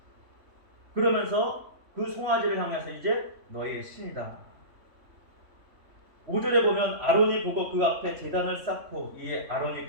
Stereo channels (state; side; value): late; left; 3.5 ms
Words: 그러면서 그 송아지를 향해서 이제 너희의 신이다. 5절에 보면 아론이 보고 그 앞에 제단을 쌓고 이에 아론이